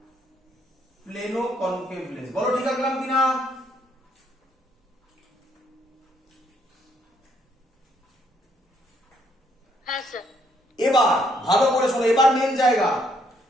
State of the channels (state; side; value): normal; both; correlation 0.70